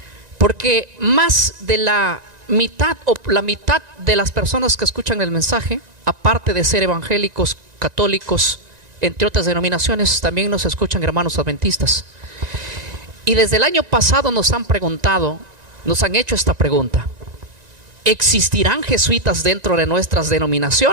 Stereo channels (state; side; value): late; left; 1.9 ms